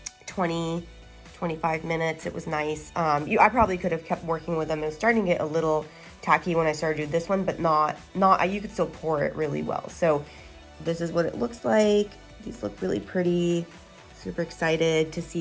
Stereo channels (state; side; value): identical; both; correlation 1.00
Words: 20-25 minutes. It was nice. I probably could have kept working with them. It was starting to get a little tacky when I started doing this one, but not, you could still pour it really well. So this is what it looks like. These look really pretty. Super excited to